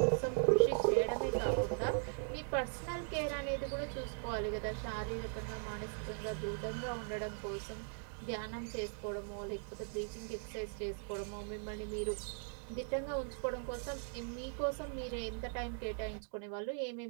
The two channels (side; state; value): left; silent; 51 dB below the other